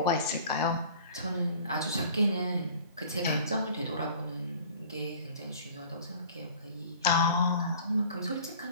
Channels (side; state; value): both; inverted; correlation -0.47